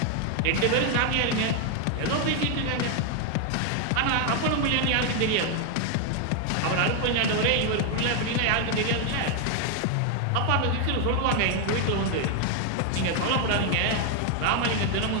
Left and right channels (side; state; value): both; different; correlation 0.00